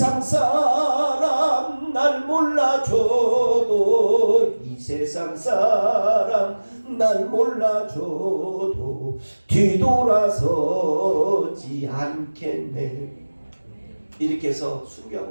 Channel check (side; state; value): both; inverted; correlation -1.00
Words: 사람 날 몰라줘도 이 세상 사람 날 몰라줘도 뒤돌아서지 않겠네. 이렇게 해서